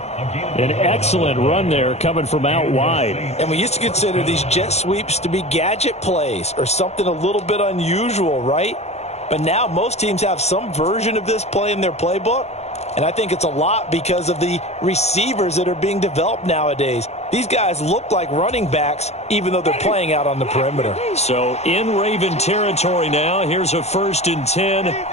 An excellent run there coming from out wide. And we used to consider these jet sweeps to be gadget plays or something a little bit unusual, right? But now most teams have some version of this play in their playbook. And I think it's a lot because of the receivers that are being developed nowadays. These guys look like running backs even though they're playing out on the perimeter. So in Raven territory now. Here's a 1st and 10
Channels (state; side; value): late; right; 0.31 ms